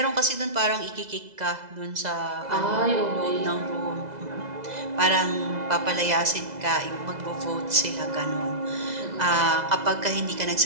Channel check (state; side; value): late; left; 2.0 ms